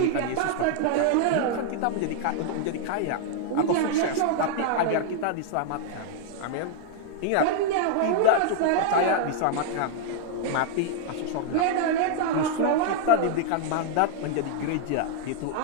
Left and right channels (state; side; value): different; both; correlation -0.01